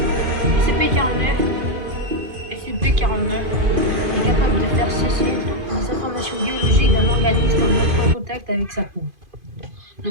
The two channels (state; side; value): late; left; 2.5 ms